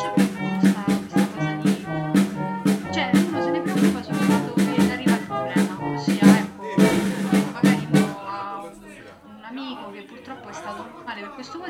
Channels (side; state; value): both; identical; correlation 1.00